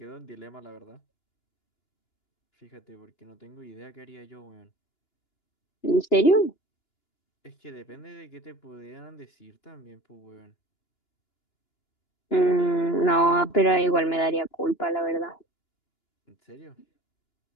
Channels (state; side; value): late; right; 2.9 ms